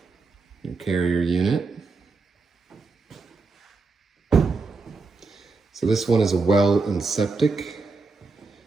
Your carrier unit. So this one is a well and septic.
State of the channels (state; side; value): quieter; left; 4.0 dB